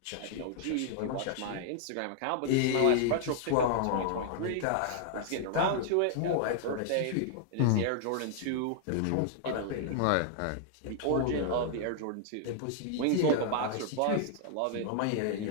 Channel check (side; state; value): both; different; correlation -0.01